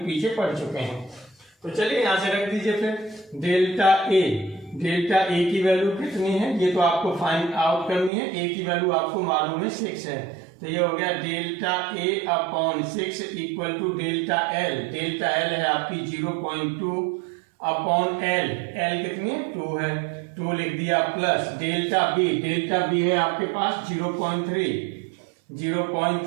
पीछे पढ़ चुके हैं। तो चलिए यहां से रख दीजिए फिर डेल्टा ए की वैल्यू कितनी है ये तो आपको फाइंड आउट करनी है। ए की वैल्यू आपको मालूम है 6 है, तो ये हो गया delta A upon 6 equal to delta L है आपकी 0.2 अपॉन एल कितनी है 2 है, 2 लिख दिया प्लस डेल्टा बी है आपके पास 0.3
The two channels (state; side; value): drops out; left; at 8.1 s